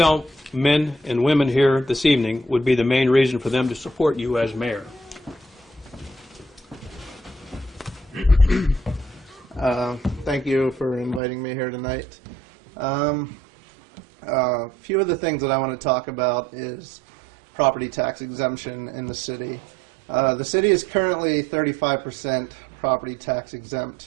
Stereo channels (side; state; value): left; drops out; at 11.2 s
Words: men and women here this evening would be the main reason for them to support you as mayor? Thank you for inviting me here tonight. A few of the things that I want to talk about is property tax exemption in the city. The city is currently 35% property tax